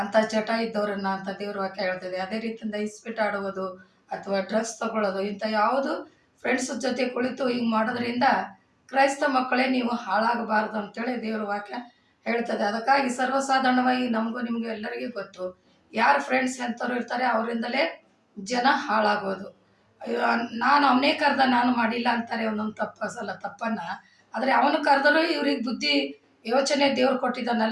ಅಂತ ಚಟ ಇದ್ದವರನ್ನ ಅಂತ ದೇವ್ರ ವಾಕ್ಯ ಹೇಳ್ತದೆ. ಅದೇ ರೀತಿಯಿಂದ ಇಸ್ಪೀಟ್ ಆಡುವುದು ಅಥವಾ ಡ್ರಗ್ಸ್ ತಗೊಳ್ಳೋದು, ಇಂಥ ಯಾವುದು ಫ್ರೆಂಡ್ಸ್ ಜೊತೆ ಕುಳಿತು ಹಿಂಗೆ ಮಾಡೋದ್ರಿಂದ ಕ್ರೈಸ್ತ ಮಕ್ಕಳೇ ನೀವು ಹಾಳಾಗಬಾರ್ದು ಅಂತೇಳಿ ದೇವ್ರ ವಾಕ್ಯ ಹೇಳ್ತದೆ. ಅದಕ್ಕಾಗಿ ಸರ್ವಸಾಧಾರಣವಾಗಿ ನಮಗೂ ನಿಮಗೂ ಎಲ್ಲರಿಗೂ ಗೊತ್ತು, ಯಾರು ಫ್ರೆಂಡ್ಸ್ ಎಂಥವ್ರು ಇರ್ತಾರೆ ಅವರಿಂದಲೇ ಜನ ಹಾಳಾಗೋದು. ನಾನು ಅವನೇ ಕರೆದ ನಾನು ಮಾಡಿಲ್ಲ ಅಂತಾರೆ ಒಂದೊಂದು ತಪ್ಪನ್ನು. ಆದರೆ ಅವನು ಕರೆದರೂ ಇವ್ರಿಗೆ ಬುದ್ಧಿ ಯೋಚನೆ ದೇವ್ರು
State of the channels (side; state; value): both; identical; correlation 1.00